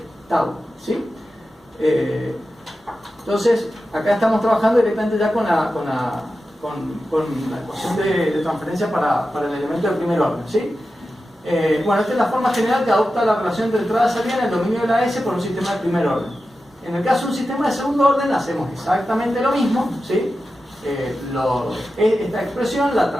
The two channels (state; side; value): normal; both; correlation 0.92